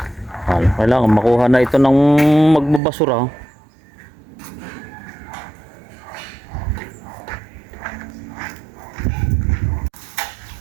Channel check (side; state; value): left; drops out; at 2.8 s